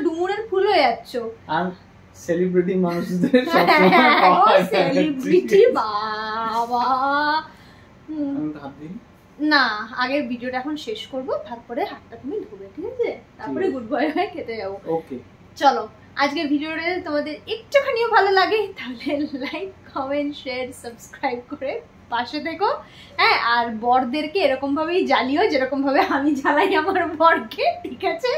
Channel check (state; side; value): identical; both; correlation 1.00